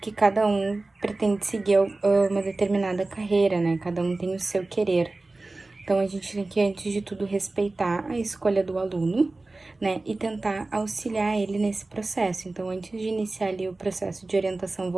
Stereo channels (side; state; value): left; quieter; 3.2 dB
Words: que cada um pretende seguir uma determinada carreira, né, cada um tem o seu querer. Então, a gente tem que, antes de tudo, respeitar a escolha do aluno, né, e tentar auxiliar ele nesse processo. Então, antes de iniciar ali o processo de orientação